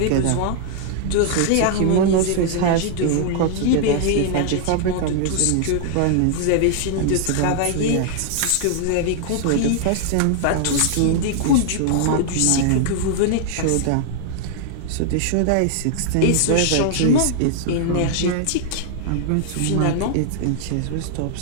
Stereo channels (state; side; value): different; both; correlation 0.00